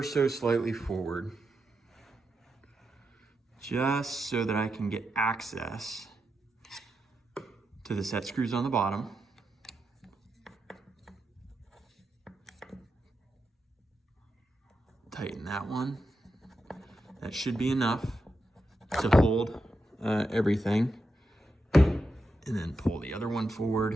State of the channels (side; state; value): both; normal; correlation 0.87